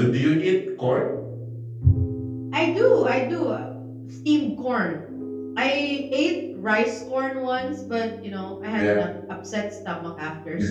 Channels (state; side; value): identical; both; correlation 1.00